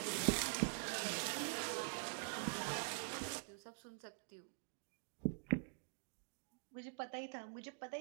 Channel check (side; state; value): left; silent; digital silence